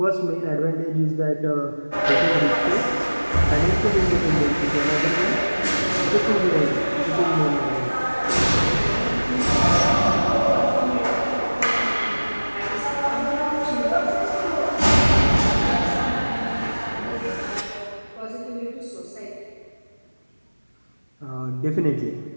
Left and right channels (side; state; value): both; inverted; correlation -1.00